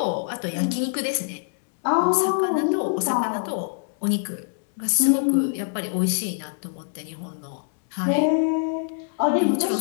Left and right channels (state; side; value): silent; right; digital silence